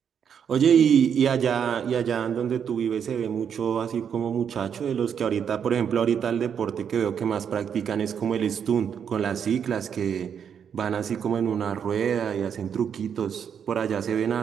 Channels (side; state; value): left; quieter; 7.8 dB